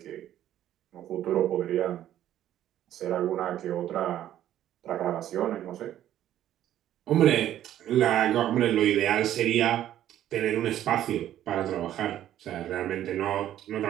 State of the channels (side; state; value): left; quieter; 12.0 dB